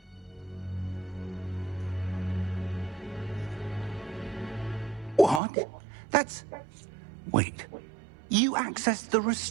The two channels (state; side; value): drops out; left; at 5.4 s